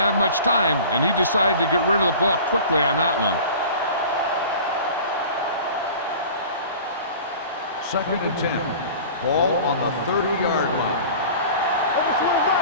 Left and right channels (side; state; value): both; inverted; correlation -0.40